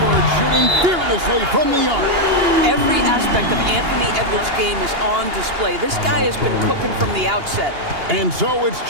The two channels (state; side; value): late; left; 2.8 ms